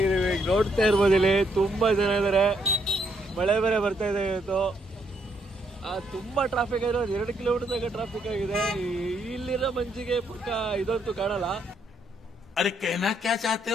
ಈಗ ನೋಡ್ತಾ ಇರ್ಬೋದು, ಇಲ್ಲಿ ತುಂಬಾ ಜನ ಇದ್ದಾರೆ. ಮಳೆ ಬೇರೆ ಬರ್ತಾ ಇದೆ ಇವತ್ತು. ತುಂಬಾ ಟ್ರಾಫಿಕ್ ಆಗಿದೆ. 2 ಕಿಲೋಮೀಟರ್ ತನಕ ಟ್ರಾಫಿಕ್ ಆಗಿದೆ. ಇಲ್ಲಿರೋ ಮಂಜಿಗೆ ಪಕ್ಕ ಇದಂತೂ ಕಾಣಲ್ಲ. ಅರೆ कहना क्या चाहते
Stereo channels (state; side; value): normal; both; correlation 0.73